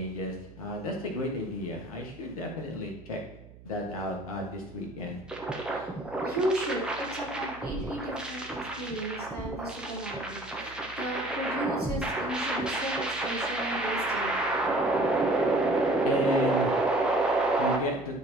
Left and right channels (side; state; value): right; noise; hum, 20 dB below the sound